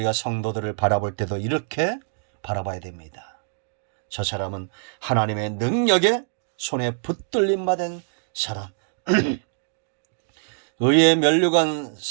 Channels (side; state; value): left; silent; digital silence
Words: 성도들을 바라볼 때도 이렇게 바라봐야 됩니다. 저 사람은 하나님의 능력의 손에 붙들림 받은 사람. 의의 면류관,